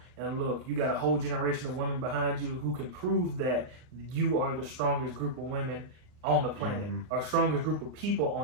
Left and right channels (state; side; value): late; left; 39 ms